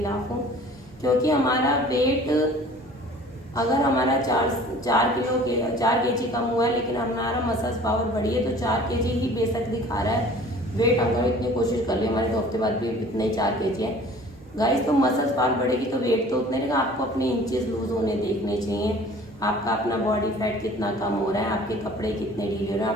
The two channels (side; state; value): both; normal; correlation 0.48